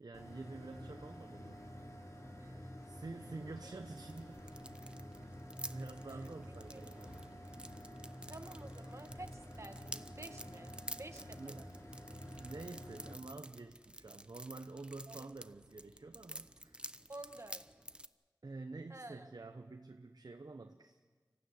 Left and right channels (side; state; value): both; normal; correlation 0.61